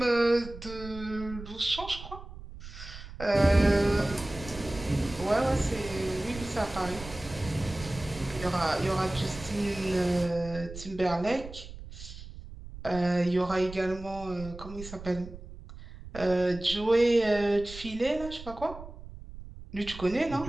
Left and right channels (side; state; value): right; noise; rumble, 14 dB below the sound